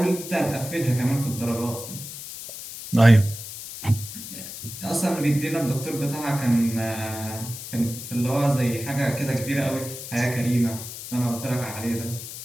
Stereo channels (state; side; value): noise; left; hiss, 10 dB below the sound